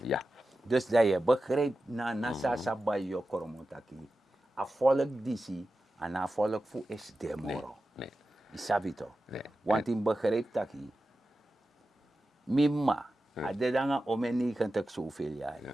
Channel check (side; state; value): both; normal; correlation 0.93